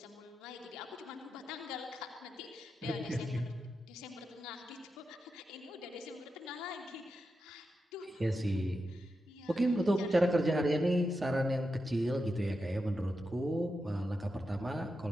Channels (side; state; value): both; normal; correlation 0.88